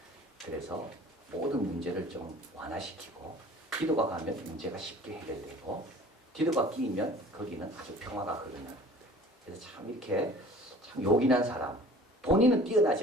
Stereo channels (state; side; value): normal; both; correlation 0.47